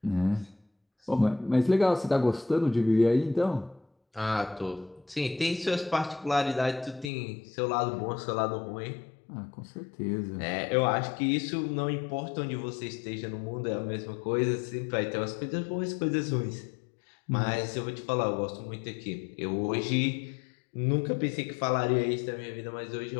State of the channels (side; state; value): right; drops out; at 7.1 s